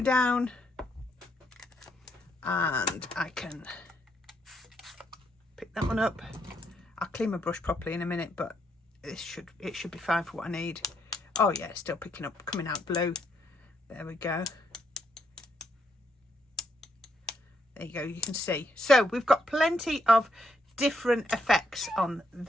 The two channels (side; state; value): both; normal; correlation 0.76